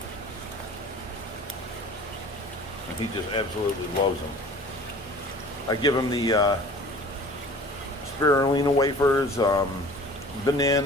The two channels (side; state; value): both; normal; correlation 0.45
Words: And he just absolutely loves them. I give him the spirulina wafers,